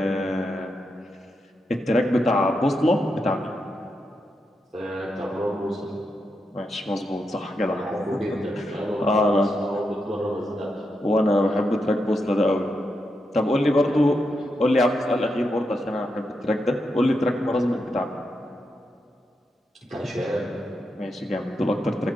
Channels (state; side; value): normal; both; correlation 0.85